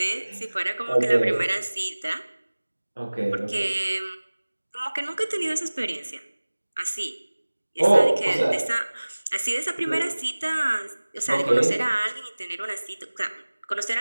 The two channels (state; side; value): inverted; both; correlation -1.00